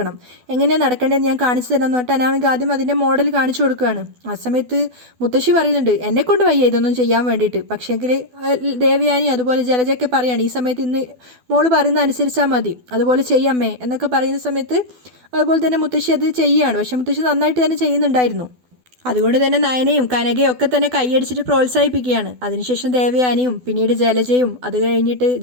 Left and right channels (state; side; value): late; left; 12 ms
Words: എങ്ങനെയാണ് നടക്കേണ്ടതെന്ന് ഞാൻ കാണിച്ചു തരാമെന്ന് പറഞ്ഞിട്ട് അനാമിക ആദ്യം അതിൻ്റെ മോഡൽ കാണിച്ചു കൊടുക്കുകയാണ്. ആ സമയത്ത് മുത്തശ്ശി പറയുന്നുണ്ട്, എന്നെക്കൊണ്ട് വയ്യ ഇതൊന്നും ചെയ്യാൻ വേണ്ടിയിട്ട്. പക്ഷേങ്കിൽ ദേവയാനി അതുപോലെ ജലജയൊക്കെ പറയാണ്, ഈ സമയത്ത് ഇന്ന് മോള് പറയുന്ന അനുസരിച്ചാൽ മതി, അതുപോലെ ചെയ്യാമേ എന്നൊക്കെ പറയുന്ന സമയത്ത് അതുപോലെ തന്നെ മുത്തശ്ശി അത് ചെയ്യുകയാണ്. പക്ഷേ മുത്തശ്ശി നന്നായിട്ട് തന്നെ ചെയ്യുന്നുണ്ടായിരുന്നു. അതുകൊണ്ട് തന്നെ നയനയും കനകയും ഒക്കെ തന്നെ കൈയടിച്ചിട്ട് പ്രോത്സാഹിപ്പിക്കുകയാണ്. അതിനുശേഷം ദേവയാനിയും പിന്നീട് ജലജയും അത് കഴിഞ്ഞിട്ട്